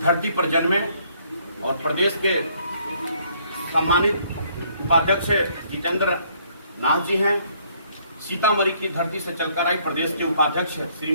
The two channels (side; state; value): both; inverted; correlation -0.65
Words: धरती पर जन्मे और प्रदेश के सम्मानित उपाध्यक्ष जितेंद्र नाथ जी हैं। सीतामढ़ी की धरती से चलकर आई प्रदेश के उपाध्यक्ष